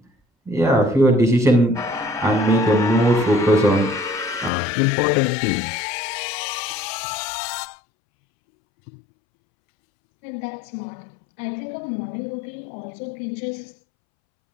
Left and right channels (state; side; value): drops out; right; at 4.5 s